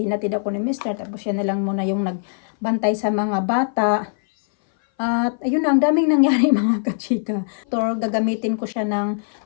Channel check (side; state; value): right; silent; 59 dB below the other